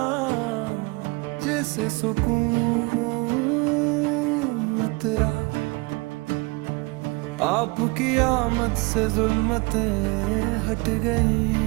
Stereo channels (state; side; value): quieter; left; 26.4 dB